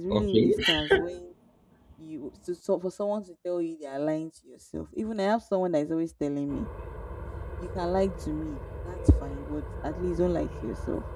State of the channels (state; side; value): identical; both; correlation 1.00